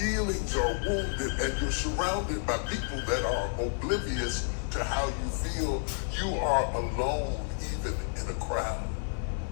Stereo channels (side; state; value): right; silent; digital silence